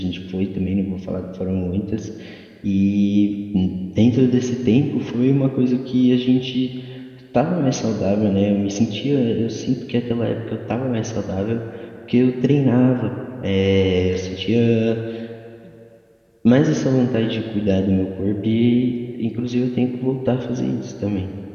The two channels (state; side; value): identical; both; correlation 1.00